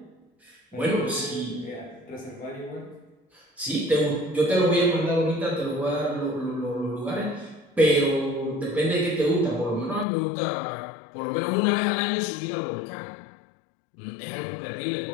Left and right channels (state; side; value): drops out; right; at 10.1 s